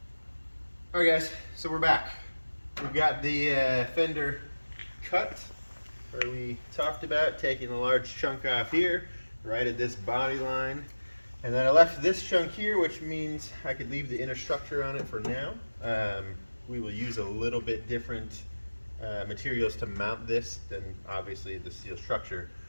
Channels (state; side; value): inverted; both; correlation -1.00